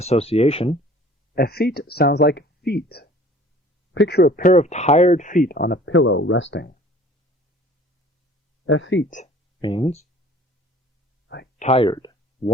effete sounds like feet. Picture a pair of tired feet on a pillow resting. Effete means tired,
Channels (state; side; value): normal; both; correlation 0.50